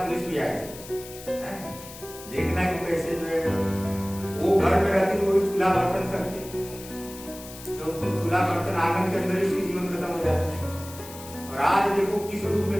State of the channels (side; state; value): left; noise; hiss, 15 dB below the sound